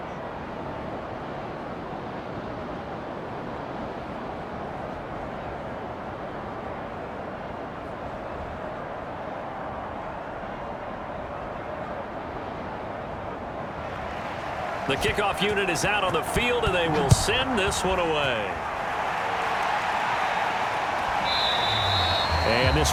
The kickoff unit is out on the field, and they will send this one away. And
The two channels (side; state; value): both; identical; correlation 1.00